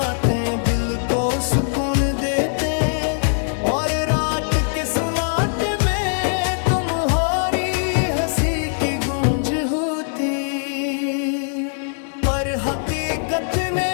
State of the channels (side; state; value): right; silent; digital silence